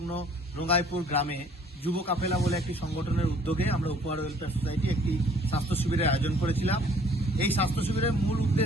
রঙ্গাইপুর গ্রামে যুব কাফেলা বলে একটি সংগঠনের উদ্যোগে আমরা উপহার ওয়েলফেয়ার সোসাইটি একটি স্বাস্থ্য শিবিরের আয়োজন করেছিলাম। এই স্বাস্থ্য শিবিরের মূল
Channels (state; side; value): normal; both; correlation 0.56